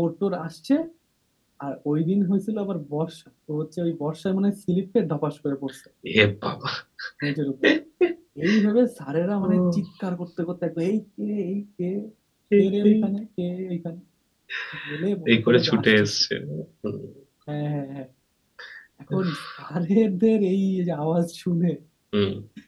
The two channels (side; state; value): both; identical; correlation 1.00